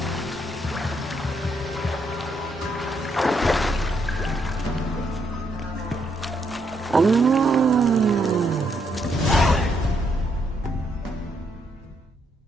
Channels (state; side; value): normal; both; correlation 0.75